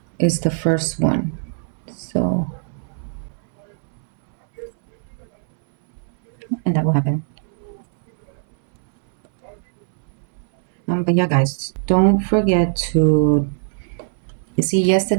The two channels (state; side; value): silent; left; 64 dB below the other